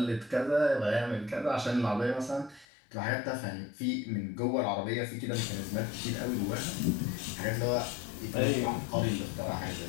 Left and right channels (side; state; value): right; drops out; at 2.7 s